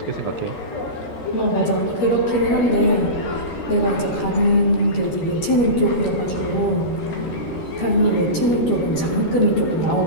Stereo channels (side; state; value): right; late; 13 ms